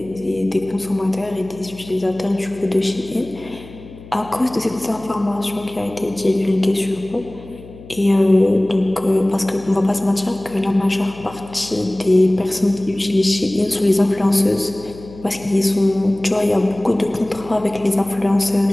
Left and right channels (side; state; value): left; noise; hum, 18 dB below the sound